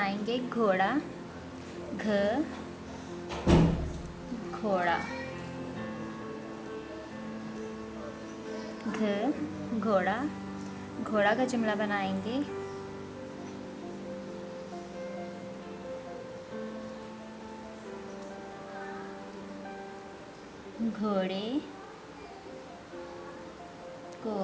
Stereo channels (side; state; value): both; identical; correlation 1.00